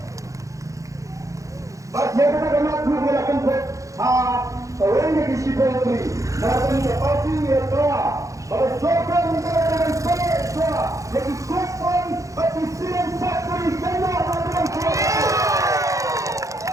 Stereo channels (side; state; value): left; late; 0.16 ms